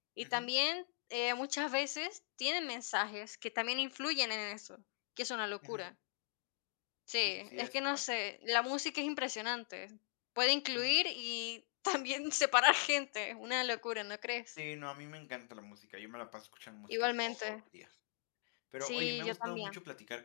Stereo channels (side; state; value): right; silent; 51 dB below the other